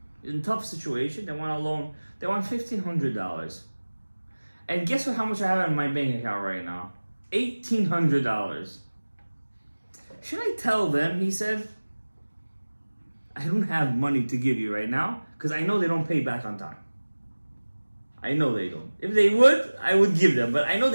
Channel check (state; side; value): inverted; both; correlation -1.00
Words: In a tough situation, they want a loan. They want $1,500. And guess what? How much I have in my bank account right now? $1,800. Should I tell them? He said, I don't have money to give you right now because I know they don't pay back on time. I know they don't. If they would, I would give them. But I know